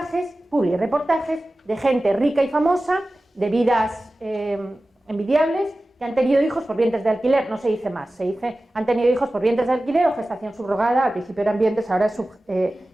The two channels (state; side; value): normal; both; correlation 0.96